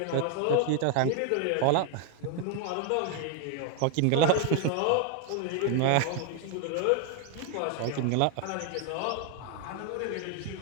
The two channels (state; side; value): different; both; correlation 0.00